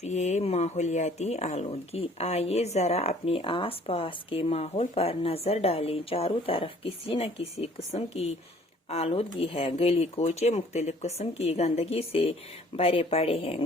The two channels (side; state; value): both; normal; correlation 0.56